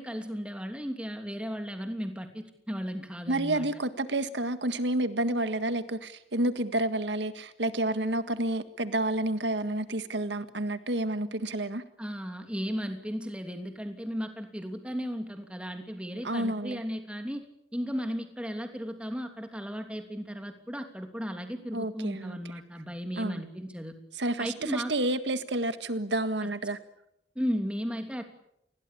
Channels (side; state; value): both; normal; correlation 0.36